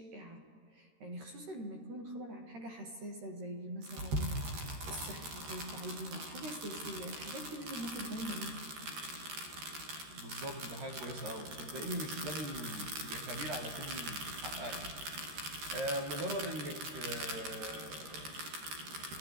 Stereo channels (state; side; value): late; left; 13 ms